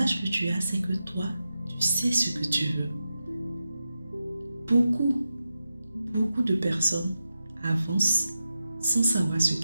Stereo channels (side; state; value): both; inverted; correlation -0.90